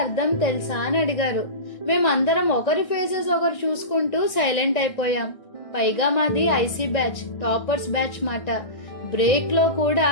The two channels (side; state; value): right; late; 1.6 ms